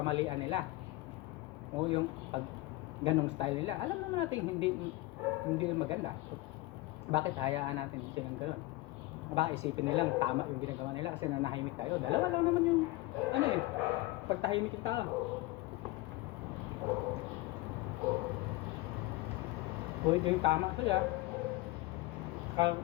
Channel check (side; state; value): right; quieter; 19.8 dB